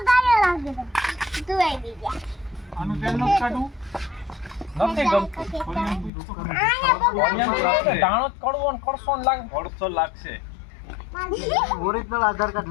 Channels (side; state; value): right; drops out; at 6.1 s